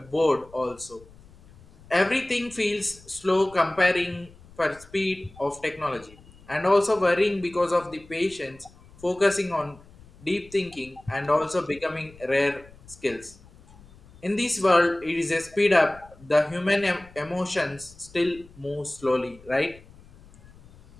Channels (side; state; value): left; noise; rumble, 24 dB below the sound